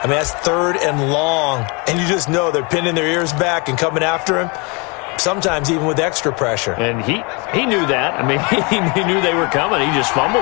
I mean, that's 3rd and long. And you just know they're pinning their ears back and coming after him. Sometimes even with extra pressure. And he knew that. I mean, he knew they were coming. He just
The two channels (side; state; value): right; quieter; 30.5 dB